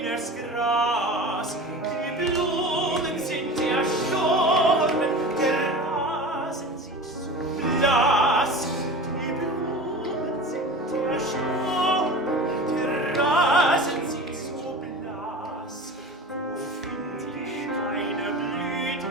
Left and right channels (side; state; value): both; normal; correlation 0.34